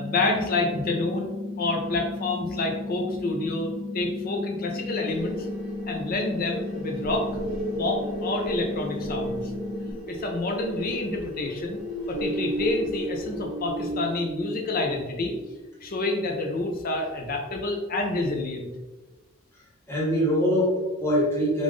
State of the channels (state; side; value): normal; both; correlation 0.33